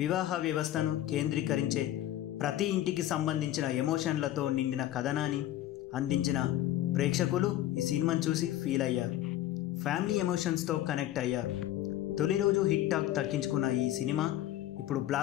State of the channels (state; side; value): quieter; right; 13.5 dB